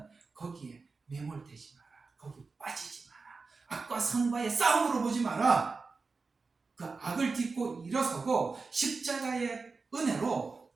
거기에 매몰되지 마라, 거기 빠지지 마라, 악과 선과의 싸움으로 보지 마라, 그 악을 딛고 일어서고 십자가의 은혜로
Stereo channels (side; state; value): left; quieter; 4.3 dB